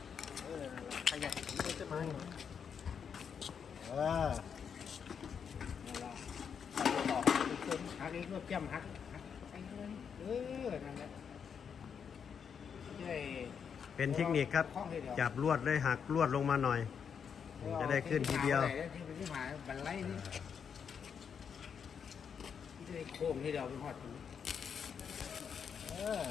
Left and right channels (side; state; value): right; quieter; 7.0 dB